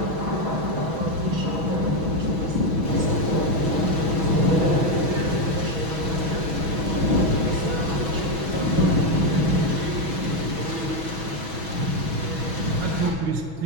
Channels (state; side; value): late; left; 6.2 ms